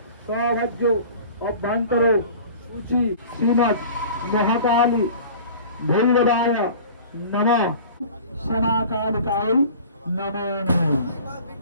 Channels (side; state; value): both; inverted; correlation -0.42